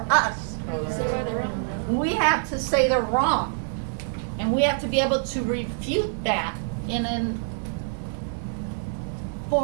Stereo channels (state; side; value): silent; left; digital silence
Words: us? We have to say they're wrong. And we have to be able to refute that in a